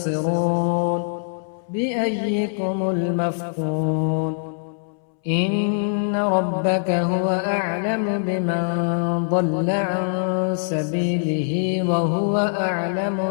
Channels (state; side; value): silent; right; 64 dB below the other